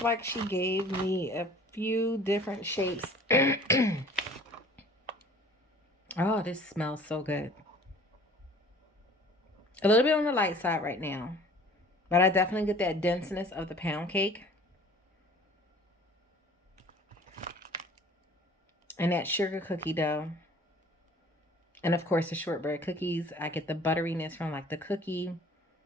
like she gave me a few different shapes. Oh, this smells so good. A little bit on the light side right now, but I definitely get that denseness of the pound cake and that sugar cookie dough. And of course the shortbread cookies. I get the butteriness from like the cookie,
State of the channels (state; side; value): normal; both; correlation 0.48